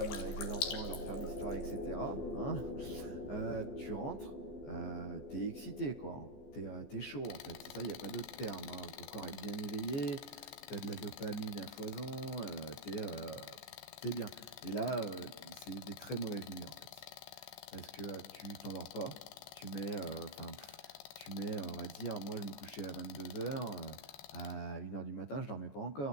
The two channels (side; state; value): right; late; 14 ms